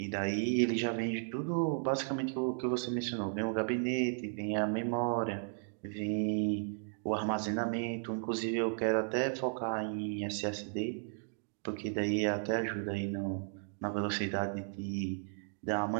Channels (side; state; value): left; silent; digital silence